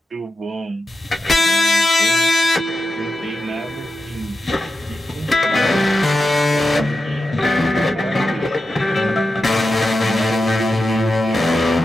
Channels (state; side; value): normal; both; correlation 0.90